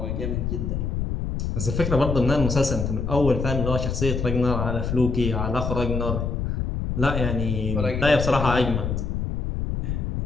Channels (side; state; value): left; noise; rumble, 2 dB below the sound